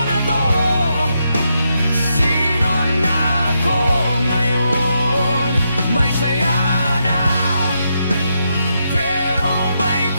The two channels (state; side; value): inverted; both; correlation -0.81